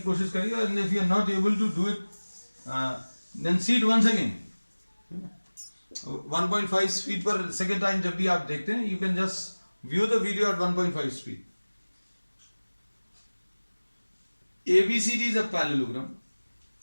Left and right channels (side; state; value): both; inverted; correlation -1.00